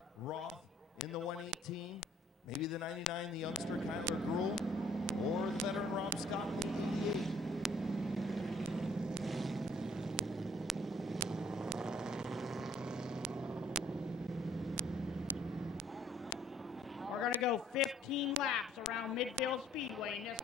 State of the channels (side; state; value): both; normal; correlation 0.61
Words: Roth in the 118. Maybe the 99, the youngster Kyler Gruhl, or the veteran Rob Scott in the 88. We're going to go 15 laps around Midvale Speedway in this